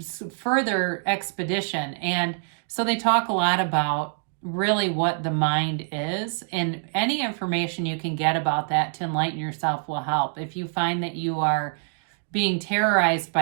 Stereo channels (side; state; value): left; silent; digital silence